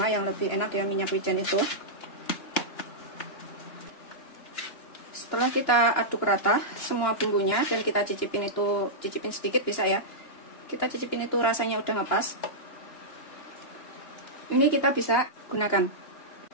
yang lebih enak ya minyak wijen itu. Setelah kita aduk rata semua bumbunya dan kita cicipin sedikit bisa ya. Kita cicipin itu rasanya udah ngepas. Ini kita bisa gunakan.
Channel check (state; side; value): late; right; 2.9 ms